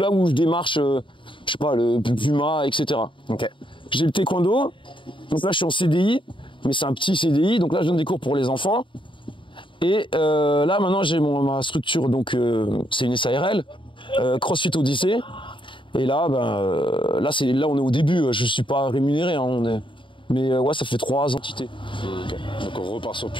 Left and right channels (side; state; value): right; late; 0.24 ms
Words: où je démarche, je sais pas, le Puma, etc. Ok. J'ai le taekwondo, donc là je suis en CDI, mais c'est un petit CDI, donc là je donne des cours pour les enfants. Et là maintenant j'ai ma structure, donc c'est une SARL, CrossFit Odyssey. Et là, là on est au début, je suis pas rémunéré, mais ouais, ça fait 3 entités. Okay. Donc on repart sur